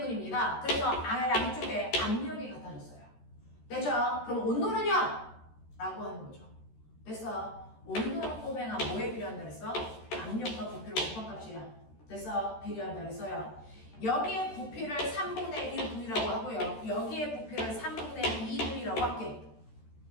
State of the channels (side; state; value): right; late; 13 ms